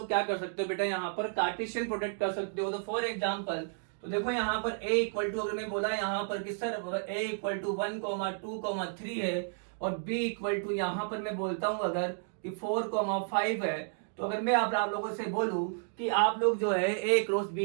क्या कर सकते हो बेटा, यहाँ पर कार्टेशियन प्रोडक्ट कर सकते हो। तो फॉर एग्जांपल, तो देखो यहाँ पर a इक्वल टू, अगर मैं बोला यहाँ पर कि सर a इक्वल टू 1,2,3 है और b इक्वल टू यहाँ पर मैं बोलता हूं अगर कि 4,5 है, तो अगर मैं आप लोगों से बोलूं कि आप लोग जो है a क्रॉस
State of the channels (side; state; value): left; silent; digital silence